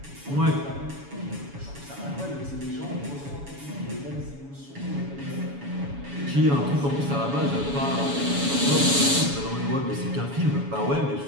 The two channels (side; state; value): left; late; 7.1 ms